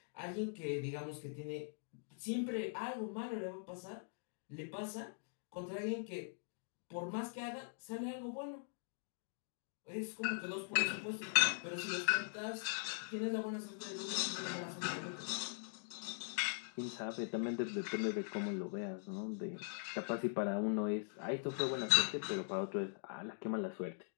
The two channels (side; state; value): right; silent; digital silence